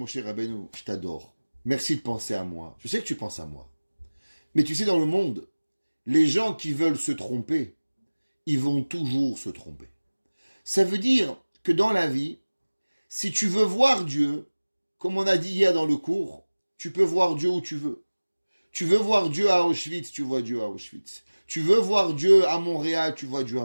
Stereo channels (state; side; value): inverted; both; correlation -1.00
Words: Rabbeinu, je t'adore. Merci de penser à moi. Je sais que tu penses à moi. Mais tu sais, dans le monde, les gens qui veulent se tromper, ils vont toujours se tromper. Ça veut dire que dans la vie, si tu veux voir Dieu, comme on a dit hier dans le cours, tu peux voir Dieu où tu veux. Tu veux voir Dieu à Auschwitz, tu vois Dieu à Auschwitz. Tu veux voir Dieu à Montréal, tu vois Dieu à